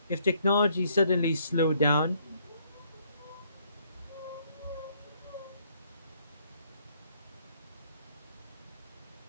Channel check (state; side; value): inverted; both; correlation -0.68